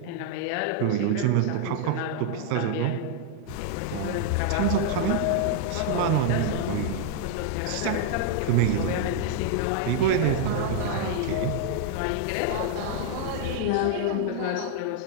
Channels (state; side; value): different; both; correlation 0.00